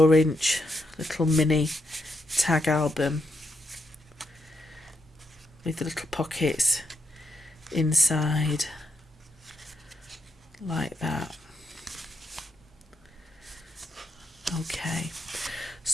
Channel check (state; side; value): normal; both; correlation 0.81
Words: inch little mini tag album with the little pockets inside like that. Okay,